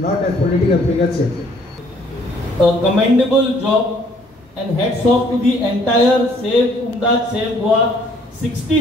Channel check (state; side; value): normal; both; correlation 0.62